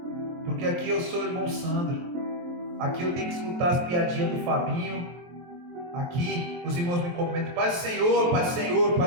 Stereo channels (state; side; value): late; left; 23 ms